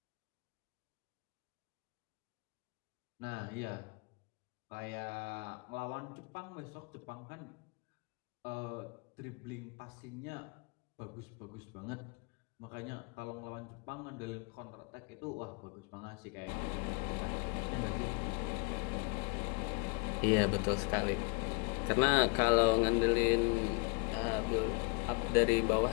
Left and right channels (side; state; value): right; quieter; 33.3 dB